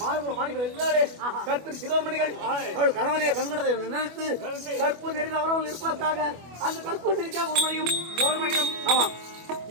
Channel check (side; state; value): left; late; 25 ms